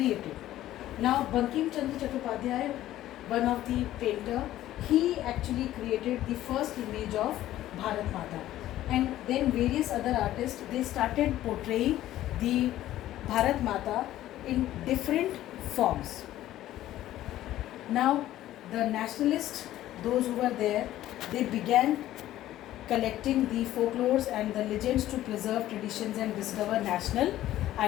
Now Bankim Chandra Chattopadhyay, one of the painter, he actually created the first image of Bharat Mata, and then various other artists, they started portraying the Bharat Mata in different forms. Now the nationalists, those who were there, they began collecting the folklores and the legends to preserve traditions and discover national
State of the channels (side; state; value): right; quieter; 13.9 dB